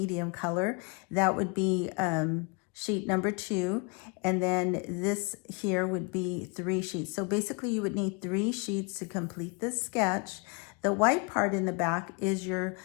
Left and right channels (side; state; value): right; quieter; 32.7 dB